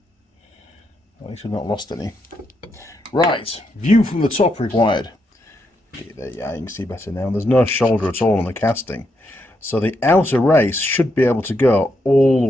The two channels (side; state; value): both; normal; correlation 0.80